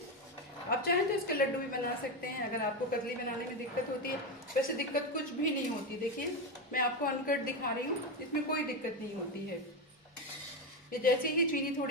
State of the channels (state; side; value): normal; both; correlation 0.12